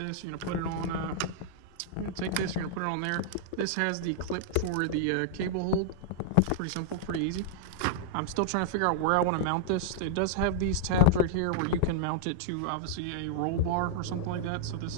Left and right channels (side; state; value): both; different; correlation -0.01